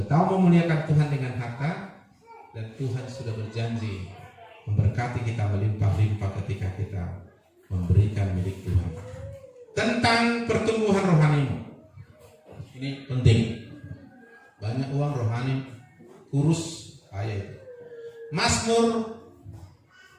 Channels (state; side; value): identical; both; correlation 1.00